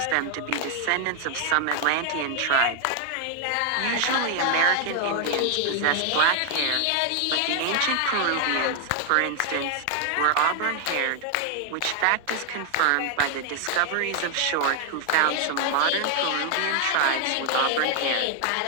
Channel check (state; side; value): different; both; correlation 0.00